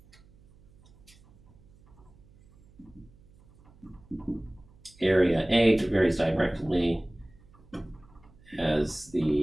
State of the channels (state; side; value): noise; right; hum, 27 dB below the sound